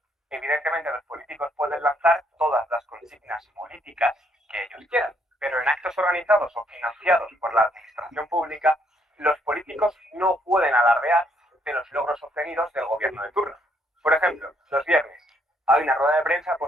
evidentemente los políticos pueden lanzar todas las consignas políticas que ellos quieran, pero en actos organizados o financiados por la administración pública, los políticos no pueden alardear de los logros obtenidos del gobierno de turno. Por ejemplo, los viernes hay una rueda de prensa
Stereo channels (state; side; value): normal; both; correlation 0.70